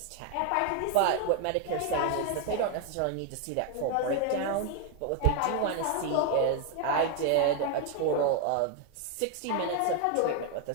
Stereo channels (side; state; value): both; different; correlation 0.01